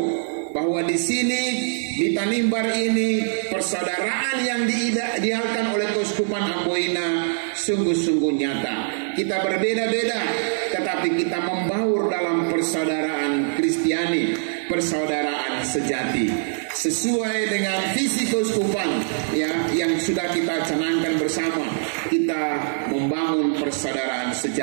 bahwa di sini di Tanimbar ini persaudaraan yang diidealkan oleh Keuskupan Amboina sungguh-sungguh nyata. Kita berbeda-beda tetapi kita membaur dalam persaudaraan Kristiani, persaudaraan sejati, sesuai dengan visi keuskupan ya yang sudah kita canangkan bersama. Kita membangun persaudaraan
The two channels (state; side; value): silent; left; digital silence